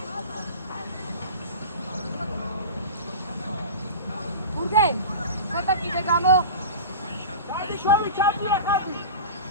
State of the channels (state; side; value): inverted; both; correlation -0.31